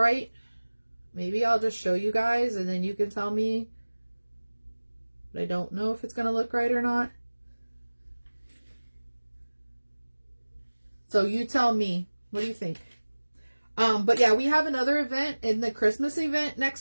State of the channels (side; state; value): both; inverted; correlation -1.00